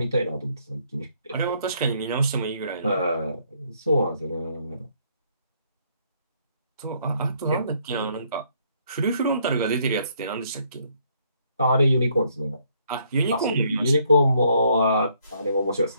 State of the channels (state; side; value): inverted; both; correlation -0.68